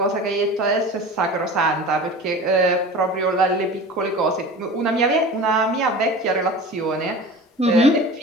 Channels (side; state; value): both; normal; correlation 0.36